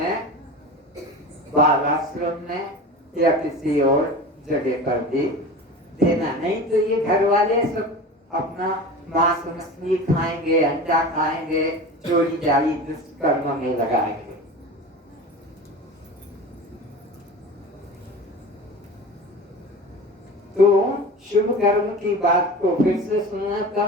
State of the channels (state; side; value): normal; both; correlation 0.33